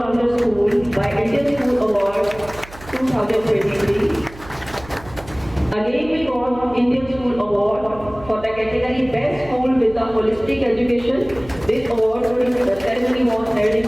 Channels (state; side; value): noise; right; hum, 18 dB below the sound